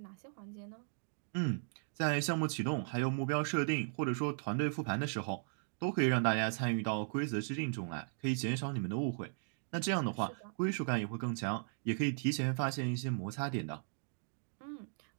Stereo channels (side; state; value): left; silent; 53 dB below the other